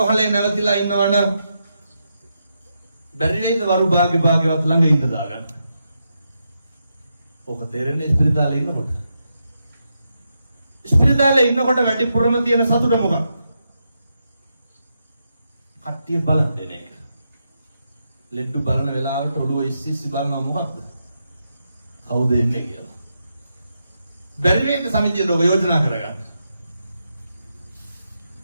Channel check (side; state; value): both; inverted; correlation -0.84